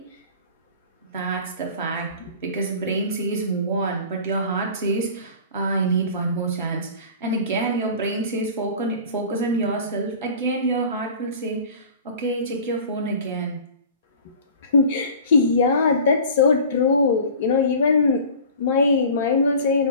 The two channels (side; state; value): both; inverted; correlation -0.41